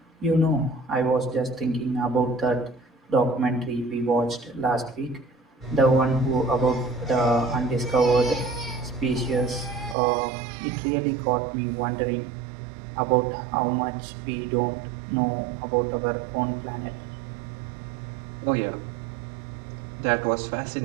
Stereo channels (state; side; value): drops out; left; at 10.0 s